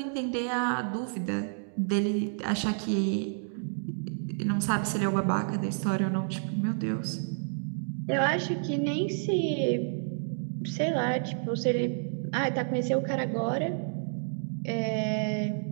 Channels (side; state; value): left; silent; digital silence